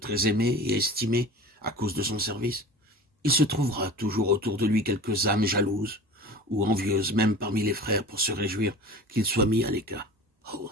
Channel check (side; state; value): both; normal; correlation 0.37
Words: aimé et estimé à cause de son service? Il se trouvera toujours autour de lui quelques âmes jalouses ou envieuses, même parmi les frères, pour se réjouir qu'il soit mis à l'écart. Oh,